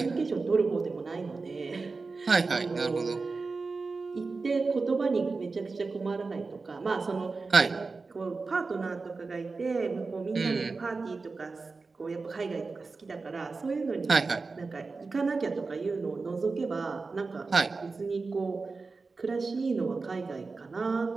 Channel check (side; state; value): left; quieter; 4.1 dB